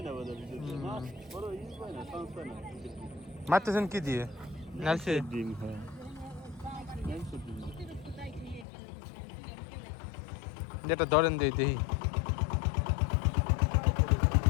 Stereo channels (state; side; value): drops out; right; at 8.7 s